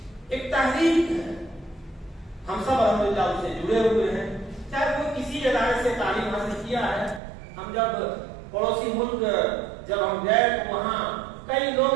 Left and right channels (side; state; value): left; drops out; at 7.2 s